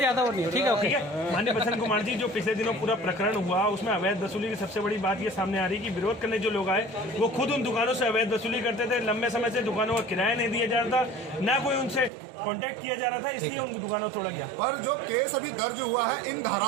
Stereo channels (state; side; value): drops out; left; at 12.1 s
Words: वो नहीं है। ठीक है, ओके। माननीय बसंत कुमार जी, जो पिछले दिनों पूरा प्रकरण हुआ, उसमें अवैध वसूली की सबसे बड़ी बात ये सामने आ रही है कि विरोध करने जो लोग आए, वो खुद उन दुकानों से अवैध वसूली करते थे। लंबे समय से दुकानों का किराया नहीं दिया जा रहा था, ना कोई उनसे कांटेक्ट किया जा रहा था, इसलिए उन दुकानों को तोड़ा गया। पर जो केस अभी दर्ज हुआ है, इन